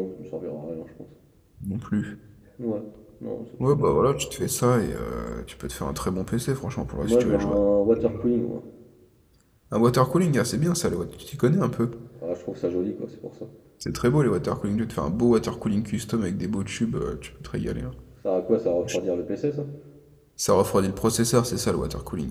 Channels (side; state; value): both; identical; correlation 1.00